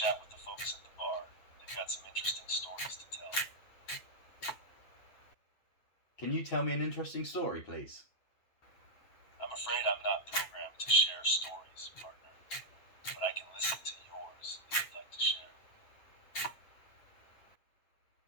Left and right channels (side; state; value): right; late; 9.2 ms